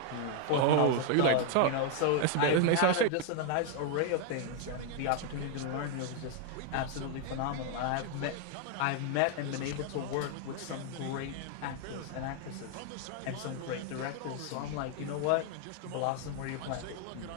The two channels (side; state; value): both; different; correlation 0.00